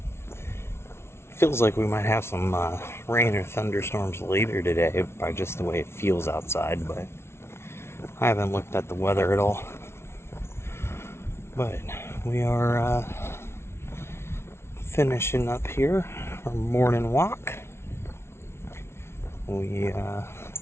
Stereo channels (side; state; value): right; late; 0.12 ms